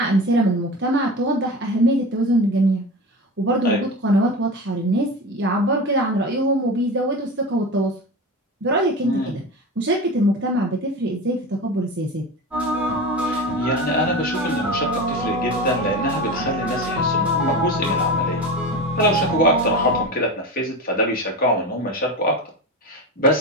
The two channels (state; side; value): normal; both; correlation 0.27